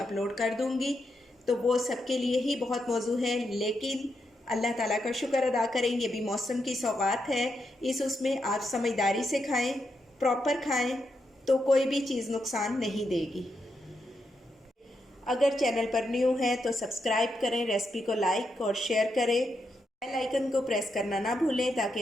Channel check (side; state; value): both; normal; correlation 0.83